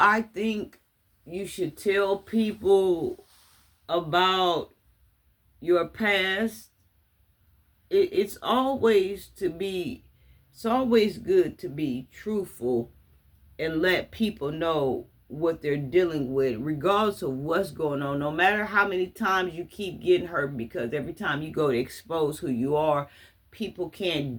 think you should tell people about your past? It's always good to be truthful and let people know what they're dealing with, regardless of what's going on. No matter how many times you keep getting hurt, because every time you go to expose who you are, people can't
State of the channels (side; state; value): both; identical; correlation 1.00